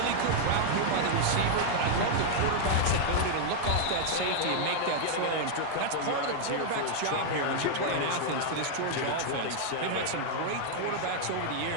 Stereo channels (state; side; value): different; both; correlation -0.01